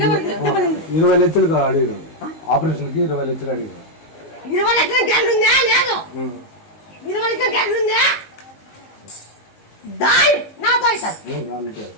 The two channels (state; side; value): late; right; 19 ms